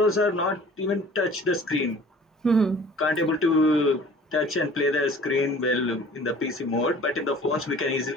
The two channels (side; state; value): both; normal; correlation 0.48